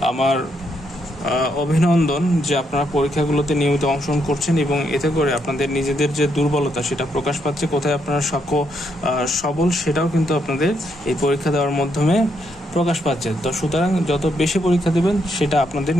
আমার অভিনন্দন, যে আপনারা পরীক্ষাগুলোতে নিয়মিত অংশগ্রহণ করছেন এবং এতে করে আপনাদের নিজেদের যে দুর্বলতা সেটা প্রকাশ পাচ্ছে, কোথায় আপনারা সবল সেটাও কিন্তু আপনাদের এই পরীক্ষা দেওয়ার মাধ্যমে প্রকাশ পাচ্ছে। তো সুতরাং যত বেশি পরীক্ষা দেবেন সেটা আপনাদের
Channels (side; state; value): both; normal; correlation 0.77